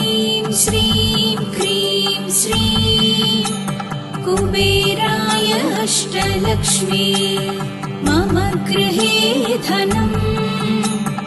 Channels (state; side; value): identical; both; correlation 1.00